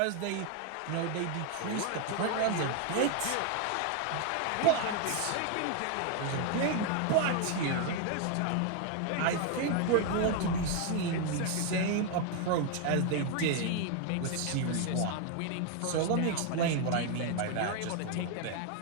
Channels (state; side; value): different; both; correlation 0.01